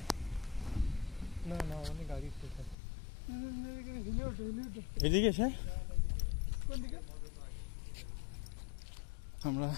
এদিকে স্যার, আমরা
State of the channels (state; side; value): drops out; right; at 2.8 s